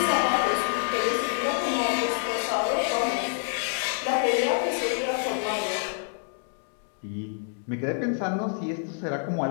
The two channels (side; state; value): right; silent; digital silence